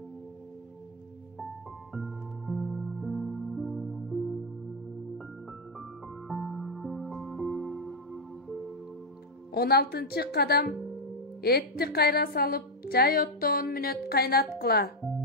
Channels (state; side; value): normal; both; correlation 0.02